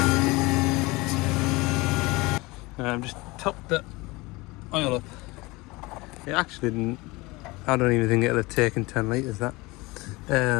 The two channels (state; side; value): quieter; right; 22.9 dB